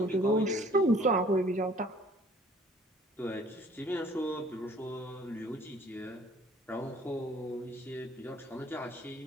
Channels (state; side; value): normal; both; correlation 0.55